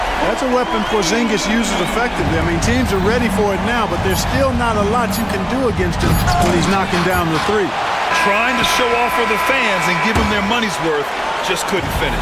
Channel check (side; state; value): both; identical; correlation 1.00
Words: That's a weapon Porzingis uses effectively. I mean, teams are ready for it now, but there's still not a lot you can do against him when he's knocking down the 3. Trying to show off for the fans and give them their money's worth, just couldn't